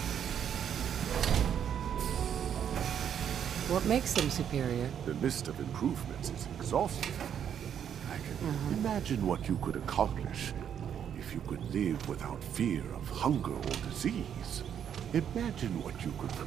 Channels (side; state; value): left; quieter; 8.8 dB